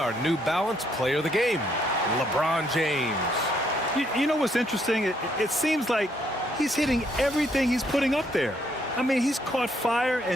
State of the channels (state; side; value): normal; both; correlation 0.71